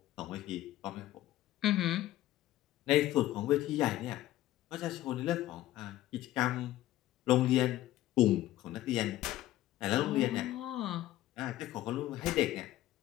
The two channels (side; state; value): right; quieter; 14.8 dB